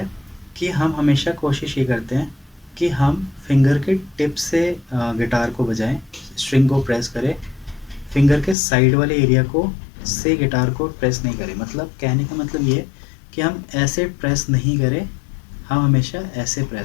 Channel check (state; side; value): drops out; right; at 8.6 s